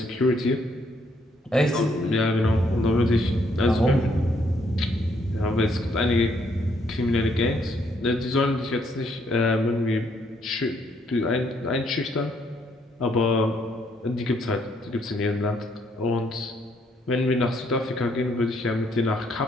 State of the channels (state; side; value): normal; both; correlation 0.70